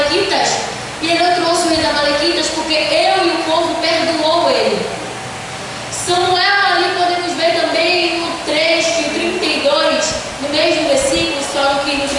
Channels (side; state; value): both; identical; correlation 1.00